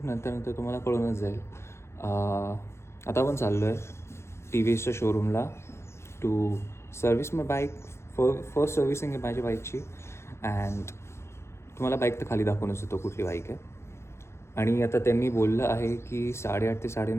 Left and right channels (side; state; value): right; late; 0.13 ms